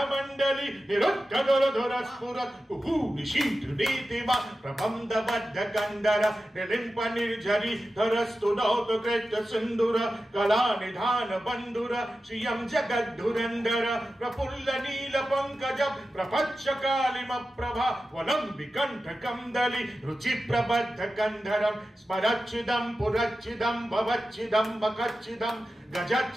मंडली निरुद्धर स्फुरत् कुहू निशीत नीतिमा प्रबंध बद्ध कंदर निलिंप निर्झरी धरस्तु नौत कृत सिंदूर कला निधान बंधुर श्रियं जगद्धुरंदर प्रफुल्ल नील पंकज प्रपच्छ कालिम प्रभा वनं विकंठ कंदली रुचि प्रबद्ध कंधरम स्मरच्चिदं पुरच्चिदं भवच्चिदं मकच्चिदं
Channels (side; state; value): both; normal; correlation 0.93